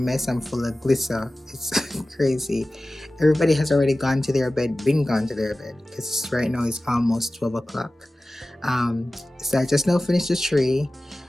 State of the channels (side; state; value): both; normal; correlation 0.96